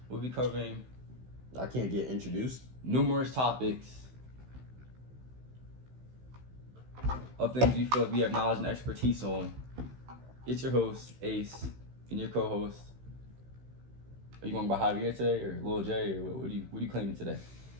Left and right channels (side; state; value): left; late; 16 ms